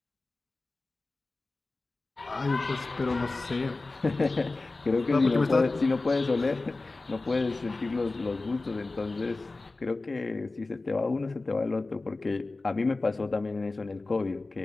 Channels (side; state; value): right; quieter; 3.3 dB